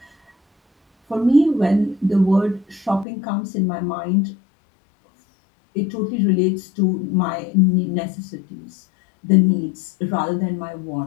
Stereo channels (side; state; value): right; drops out; at 3.1 s